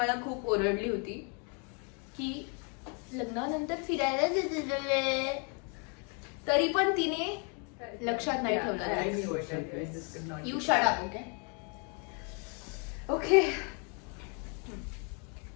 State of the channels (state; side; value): quieter; right; 37.0 dB